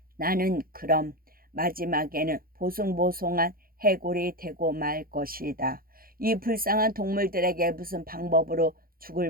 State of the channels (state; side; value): late; left; 0.42 ms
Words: 나는 그럼 마지막에는 보송보송한 해골이 되고 말 것이다. 이 불쌍한 동물들에게 무슨 방법으로